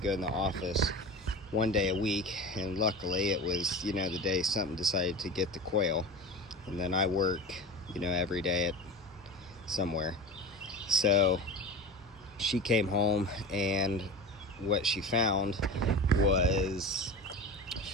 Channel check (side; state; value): both; normal; correlation 0.31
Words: go in the office one day a week, and luckily it was, the day something decided to get the quail. And then I work, every day at somewhere. So she came home, and what she found was